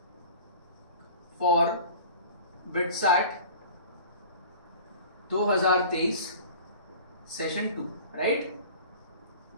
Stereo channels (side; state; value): both; inverted; correlation -0.42